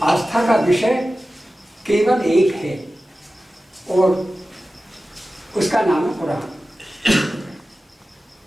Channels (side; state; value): both; normal; correlation 0.95